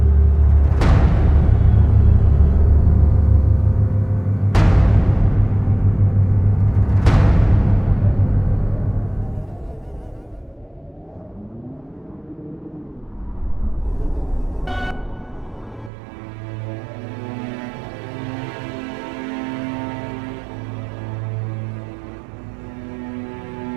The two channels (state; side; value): drops out; left; at 15.9 s